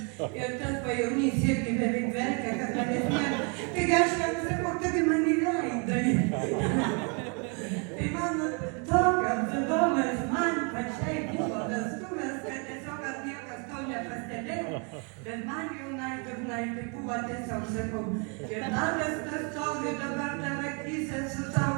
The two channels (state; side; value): quieter; left; 35.3 dB